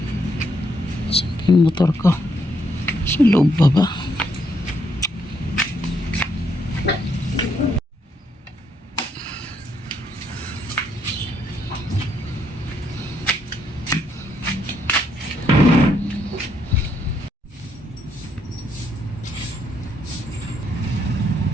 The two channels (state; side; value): normal; both; correlation 0.74